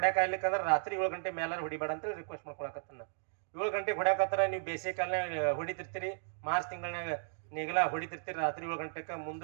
ಆಗ್ಲಿಕ್ಕಂದ್ರೆ ರಾತ್ರಿ 7 ಗಂಟೆ ಮೇಲೆ ಹೊಡಿಬೇಡ ಅಂತ ರಿಕ್ವೆಸ್ಟ್ ಮಾಡ್ಕೊಳಕತ್ತನ್ನ. 7 ಗಂಟೆಗೆ ಹೊಡ್ಯಾಕತ್ತಾರ, ನೀವು ಬೇಸಿಗೆ ಕಾಲನಾಗ ಹೊಡಿತಿರ್ತೀರಿ, ಮಾರ್ಚ್ ತಿಂಗಳಾಗ ನೇಗಿಲ ಹೊಡಿತಿರ್ತೀರಿ, ರಾತ್ರಿ 7 ಗಂಟೆಗೆ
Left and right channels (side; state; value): left; silent; digital silence